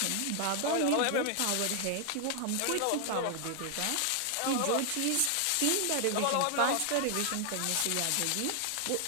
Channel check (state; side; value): different; both; correlation 0.00